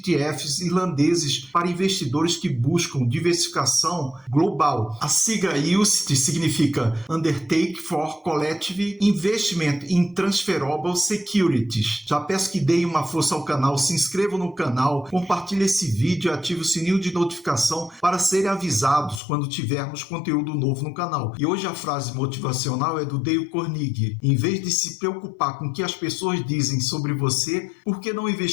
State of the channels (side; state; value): right; drops out; at 19.2 s